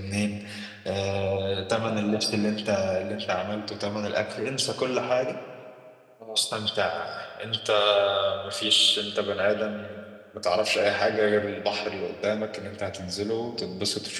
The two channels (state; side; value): identical; both; correlation 1.00